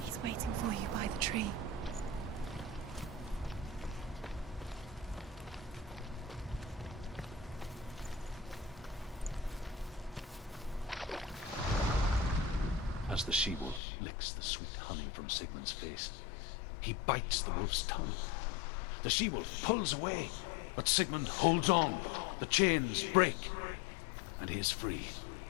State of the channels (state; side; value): drops out; right; at 13.8 s